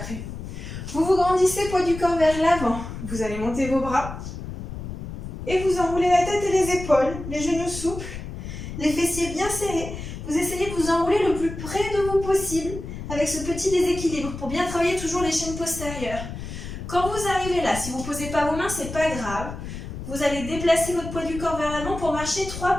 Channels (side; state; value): left; noise; rumble, 9 dB below the sound